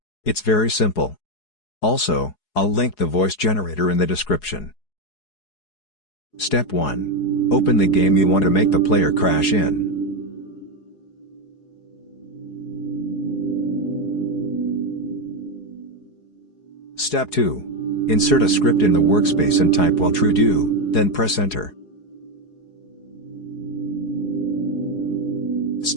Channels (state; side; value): late; right; 4.8 ms